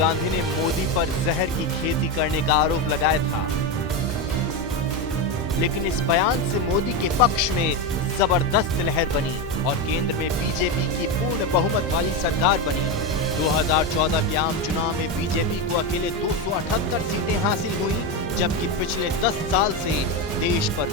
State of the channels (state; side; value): normal; both; correlation 0.13